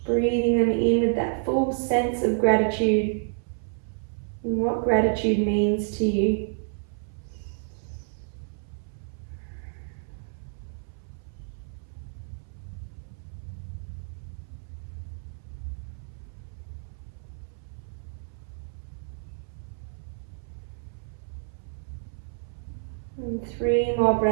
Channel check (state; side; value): silent; left; 58 dB below the other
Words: breathing them in with that full sense of gratitude and what gratitude means to you. And 3 more